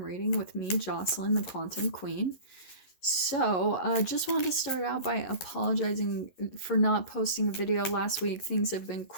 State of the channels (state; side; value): late; right; 11 ms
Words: reading with me, Jocelyn, the Quantum Queen. So, just wanted to start out by apologizing for not posting a video last week. Things have been